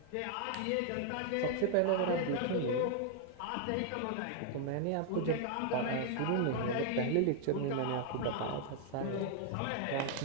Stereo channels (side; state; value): both; different; correlation 0.00